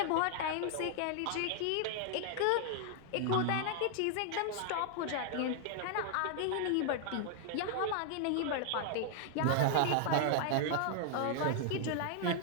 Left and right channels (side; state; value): both; different; correlation 0.00